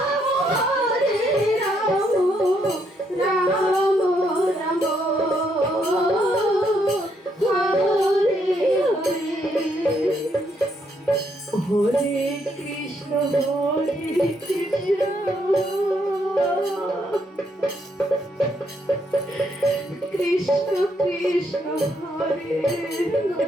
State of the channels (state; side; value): normal; both; correlation 0.74